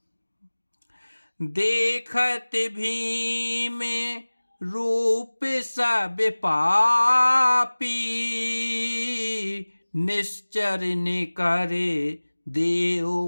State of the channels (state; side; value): inverted; both; correlation -1.00